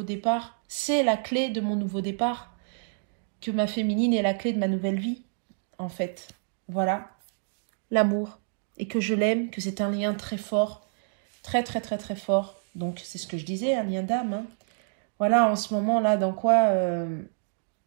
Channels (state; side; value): silent; left; digital silence